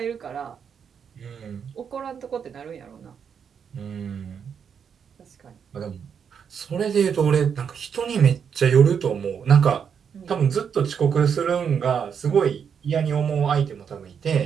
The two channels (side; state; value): left; quieter; 7.2 dB